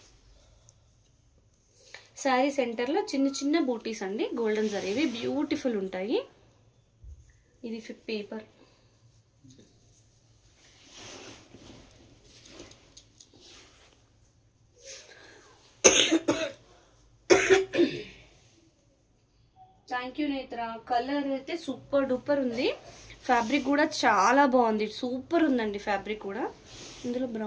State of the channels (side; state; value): both; identical; correlation 1.00